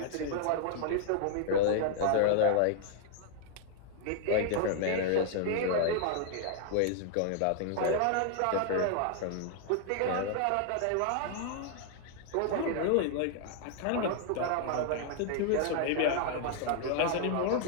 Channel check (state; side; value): different; both; correlation 0.00